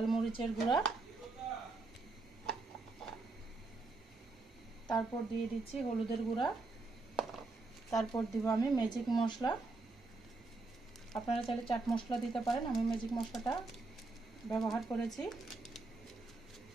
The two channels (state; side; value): quieter; left; 3.5 dB